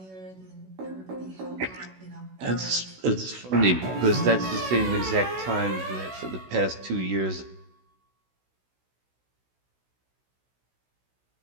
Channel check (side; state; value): left; late; 16 ms